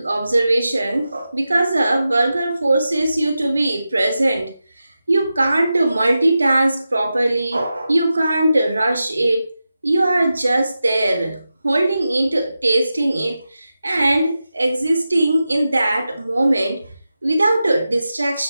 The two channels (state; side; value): inverted; both; correlation -0.91